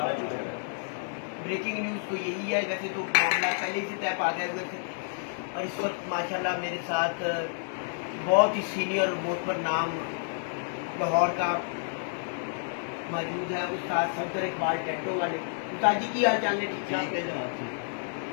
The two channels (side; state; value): right; silent; digital silence